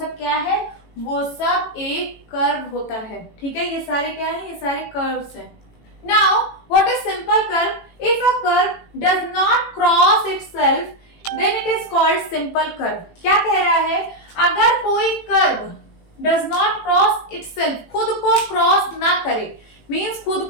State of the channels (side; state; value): right; late; 18 ms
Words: क्या है? वो सब एक कर्व होता है। ठीक है, ये सारे क्या है? ये सारे कर्व्स हैं। Now what is simple curve? If a curve does not cross itself then it is called simple curve. क्या कह रहा है? अगर कोई curve does not cross itself, खुद को क्रॉस ना करे, मींस खुद